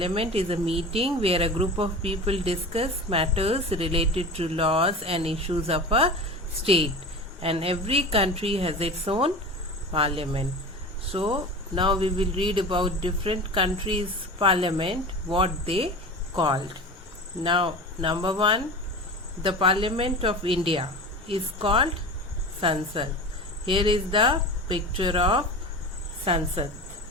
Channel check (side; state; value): both; normal; correlation 0.31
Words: is a meeting where a group of people discuss matters related to laws and issues of a state, and every country has its own parliament. So now we will read about different countries' parliament, what they called. Now number 1, the Parliament of India is called Sansad. Here is the picture of Sansad.